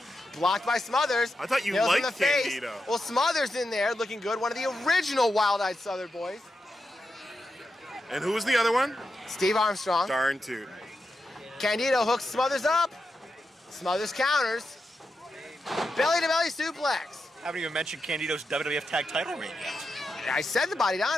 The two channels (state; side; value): normal; both; correlation 0.88